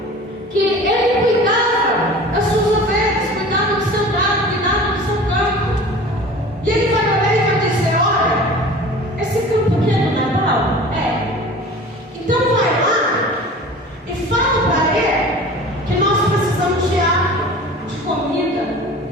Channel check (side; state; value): both; normal; correlation 0.40